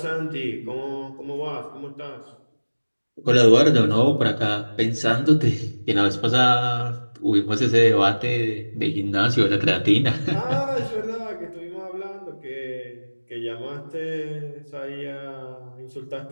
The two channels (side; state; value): both; inverted; correlation -1.00